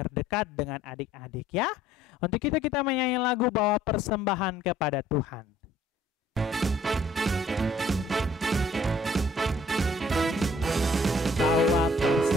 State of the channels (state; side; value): normal; both; correlation 0.58